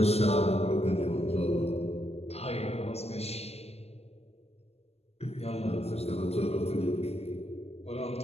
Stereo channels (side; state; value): right; late; 0.30 ms